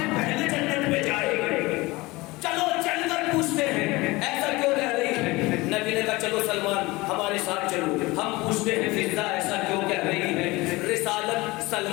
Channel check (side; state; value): right; quieter; 21.8 dB